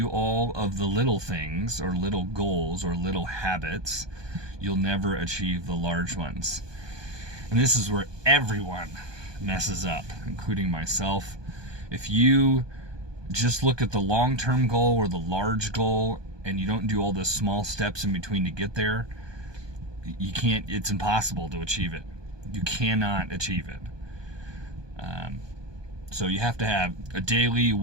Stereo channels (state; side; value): late; left; 1.2 ms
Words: all of the little things or little goals or little habits, you'll never achieve the large ones. And this is where everyone messes up, including myself. If you just look at the long-term goal or the large goal and you don't do all the small steps in between to get there, you can't, it's impossible to achieve it. You cannot achieve it. So you have to have a daily,